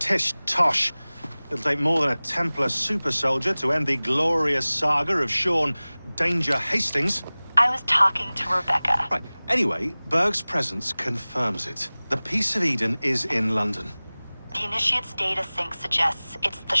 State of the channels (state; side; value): inverted; both; correlation -0.99